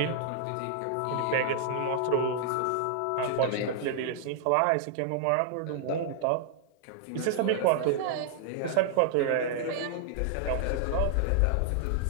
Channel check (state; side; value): different; both; correlation -0.01